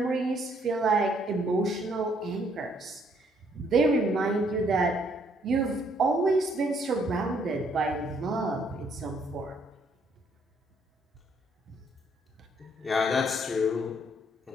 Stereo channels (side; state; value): both; normal; correlation 0.67